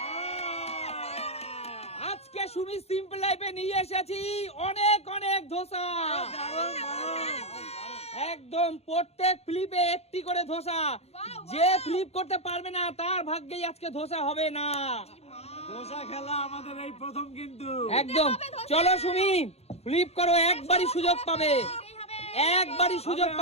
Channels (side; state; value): right; late; 0.30 ms